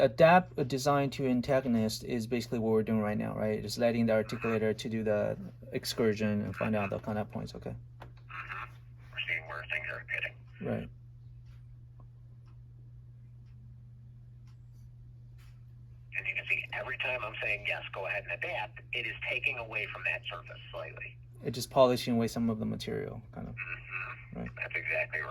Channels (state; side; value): identical; both; correlation 1.00